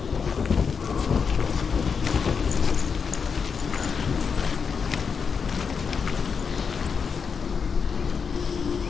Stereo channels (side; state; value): right; quieter; 6.0 dB